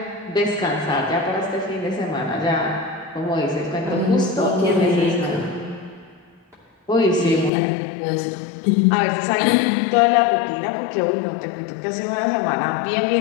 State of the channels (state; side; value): drops out; right; at 7.5 s